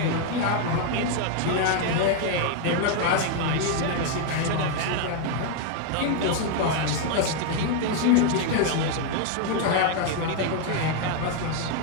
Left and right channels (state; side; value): different; both; correlation 0.00